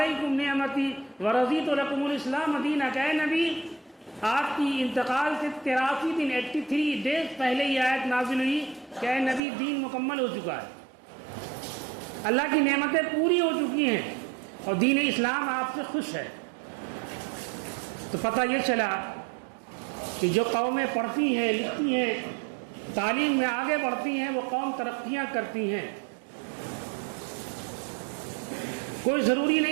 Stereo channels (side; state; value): left; drops out; at 9.4 s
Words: نعمتی ورضیت لکم الاسلام دینا، کہ اے نبی آپ کی انتقال سے 83 دن 83 ڈیز پہلے یہ آیت نازل ہوئی کہ اے نبی دین مکمل ہو چکا ہے، اللہ کی نعمتیں پوری ہو چکی ہیں اور دین اسلام آپ سے خوش ہے۔ تو پتہ یہ چلا کہ جو قومیں پڑھتی ہیں، لکھتی ہیں، تعلیم میں آگے بڑھتی ہیں، وہ قوم ترقیاں کرتی ہیں۔ کوئی ضروری